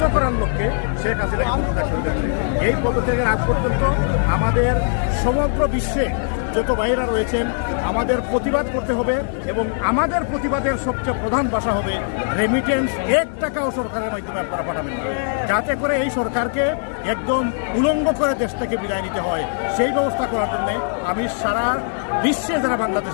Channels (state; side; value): silent; right; 65 dB below the other